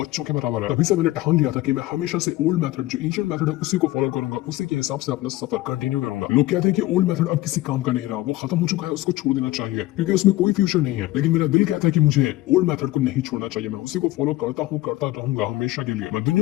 बच्चों के बराबर है। तभी से मैंने ठान लिया था कि मैं हमेशा से ओल्ड मेथड, जो एंशिएंट मेथड है, उसी को फॉलो करूंगा, उसी के हिसाब से अपना सफर कंटिन्यू करूंगा। लोग कहते हैं कि ओल्ड मेथड अब किसी काम का नहीं रहा, मेरा वो खत्म हो चुका है, उसको छोड़ देना चाहिए क्योंकि उसमें कोई फ्यूचर नहीं है। लेकिन मेरा दिल कहता है कि मुझे ओल्ड मेथड को नहीं छोड़ना चाहिए, मैं उसी को फॉलो करता हूँ, करता रहूंगा हमेशा के लिए। मैं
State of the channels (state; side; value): quieter; right; 17.3 dB